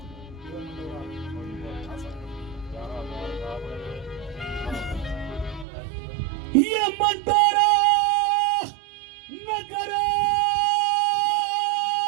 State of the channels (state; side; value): drops out; left; at 5.7 s